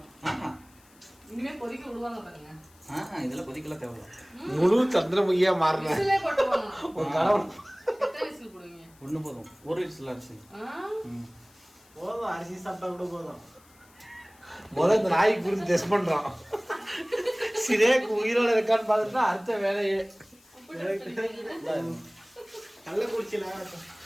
இனிமே கொதிக்க விடுவாங்க பாருங்க. இதெல்லாம் கொதிக்கலாம் தேவையில்ல. முழு சந்திரமுகியா மாறின விசிலே போட்டுவாங்க. ஒரு கணவன் எத்தனை விசில் போடுவீங்க? ஒன்று போதும். ஒரு விசில் அரிசி. போதும், அரிசி சாப்பிட்டா கூட போதும். முதல்ல இந்த நாய்க்கு குறித்து டெஸ்ட் பண்றான். சிரேக்கு உயிரோட இருக்கான்னு பார்த்துட்டு அடுத்த வேலையே கள்ளக்குறிச்சியில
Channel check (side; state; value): left; noise; hiss, 28 dB below the sound